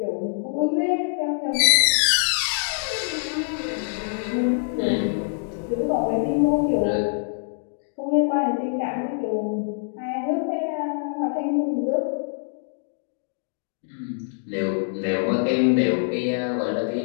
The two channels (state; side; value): silent; right; digital silence